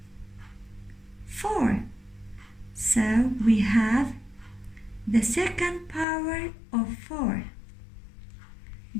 4. So we have the second power of 4.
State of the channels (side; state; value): right; drops out; at 6.1 s